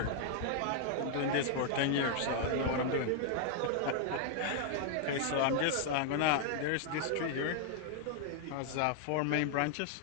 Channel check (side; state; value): both; different; correlation 0.00